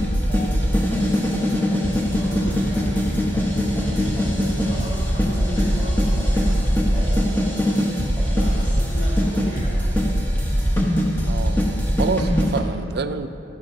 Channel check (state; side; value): normal; both; correlation 0.89